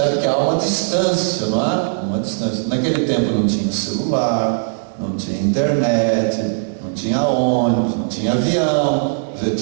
que há uma distância, não é? Uma distância. Naquele tempo não tinha celular, não tinha internet, não tinha ônibus, não tinha avião. Você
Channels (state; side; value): silent; left; digital silence